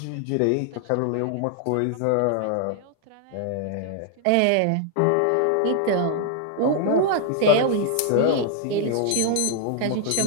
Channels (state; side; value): different; both; correlation 0.00